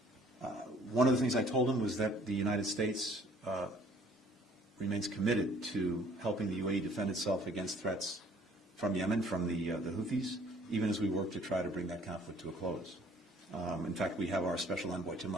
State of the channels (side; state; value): both; normal; correlation 0.57